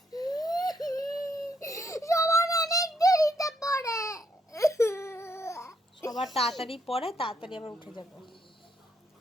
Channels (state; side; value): normal; both; correlation 0.76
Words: সবার তাড়াতাড়ি পড়ে, তাড়াতাড়ি আবার উঠে যাবে।